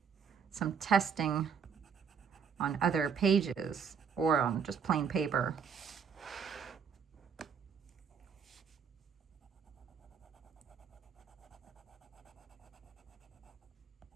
some testing on other pages or on just plain paper.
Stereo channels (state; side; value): quieter; left; 6.6 dB